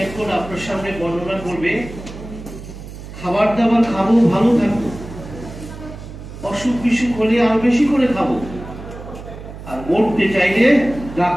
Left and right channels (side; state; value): right; noise; hum, 13 dB below the sound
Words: আপনার সামনে বর্ণনা করবে খাবার দাবার খাবো, ভালো থাকবো, অসুখ বিসুখ হলে আরো বেশি করে খাবো, আর মরতে চাইলে